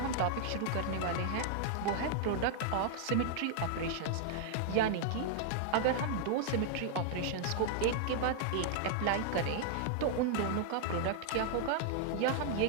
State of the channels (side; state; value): both; different; correlation -0.01